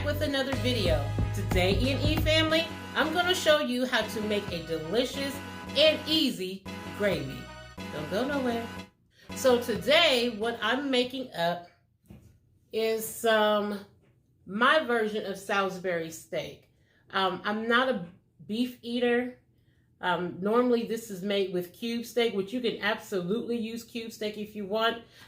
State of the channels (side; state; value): both; identical; correlation 1.00